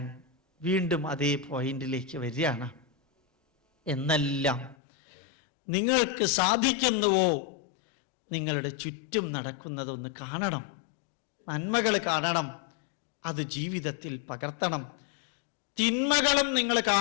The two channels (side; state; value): right; drops out; at 4.8 s